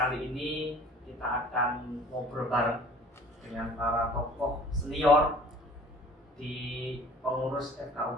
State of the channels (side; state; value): both; normal; correlation 0.49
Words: ini kita akan ngobrol bareng dengan para tokoh senior di pengurus